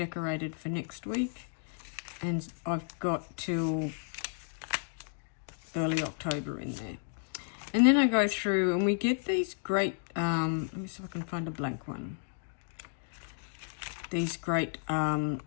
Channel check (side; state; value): right; silent; digital silence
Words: for next week, and I've got till early October in there. And then I go through and we get these great, let me see if I can find a blank one. These great